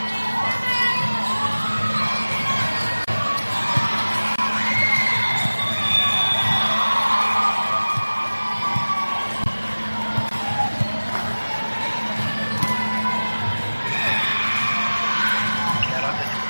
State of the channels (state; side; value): inverted; both; correlation -1.00